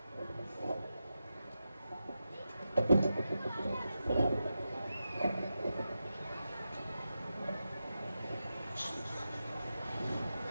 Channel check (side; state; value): both; inverted; correlation -0.90